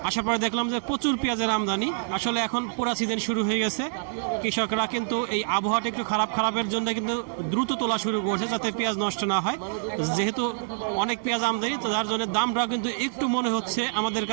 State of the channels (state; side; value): silent; left; digital silence